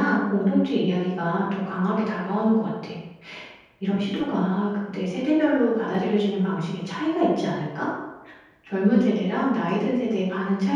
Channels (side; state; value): both; identical; correlation 1.00